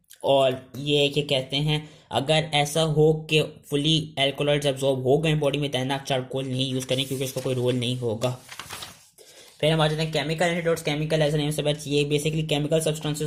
और ये क्या कहते हैं अगर ऐसा हो कि फुली एल्कलॉइड्स एब्जॉर्ब हो गए बॉडी में, देन आप चारकोल नहीं यूज करें क्योंकि इसका कोई रोल नहीं होगा। फिर हम आ जाते हैं chemical antidotes. Chemical as name से बच, ये बेसिकली केमिकल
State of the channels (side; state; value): both; identical; correlation 1.00